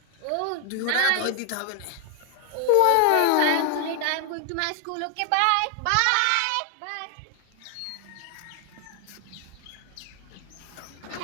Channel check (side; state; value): both; different; correlation 0.00